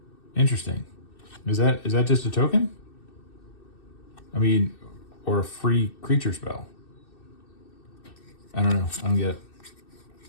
Interesting. Is that just a token? I mean, or a free creature spell. I don't know. I don't get it.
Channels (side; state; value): right; late; 2.6 ms